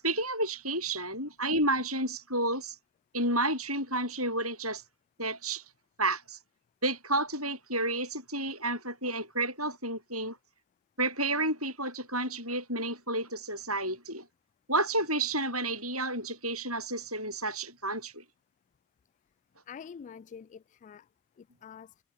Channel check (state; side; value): normal; both; correlation -0.16